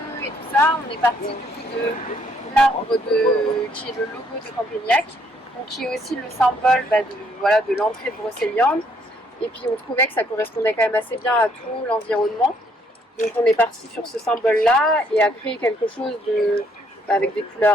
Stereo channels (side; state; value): both; normal; correlation 0.68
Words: et tout ça, on est parti du coup de l'arbre qui est le logo de Campagnac, donc qui est aussi le symbole de l'entrée de Brocéliande. Et puis on trouvait que ça correspondait quand même assez bien à tout l'environnement. Donc on est parti sur ce symbole-là et a créé quelque chose avec des